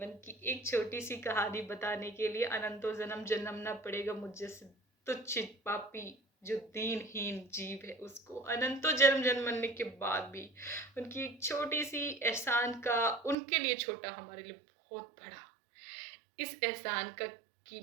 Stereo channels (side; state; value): left; drops out; at 13.4 s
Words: की एक छोटी सी कहानी बताने के लिए अनंतों जन्म जन्मना पड़ेगा मुझ जैसे तुच्छ पापी जो दीनहीन जीव है उसको, अनंतों जन्म जन्मने के बाद भी उनकी एक छोटी सी एहसान का उनके लिए छोटा, हमारे लिए बहुत बड़ा, इस एहसान का